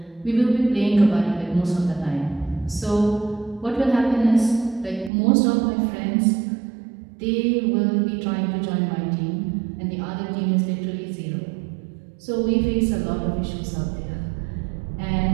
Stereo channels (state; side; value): drops out; left; at 5.1 s